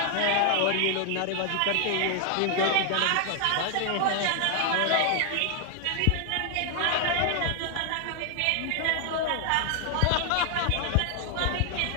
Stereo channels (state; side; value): different; both; correlation 0.00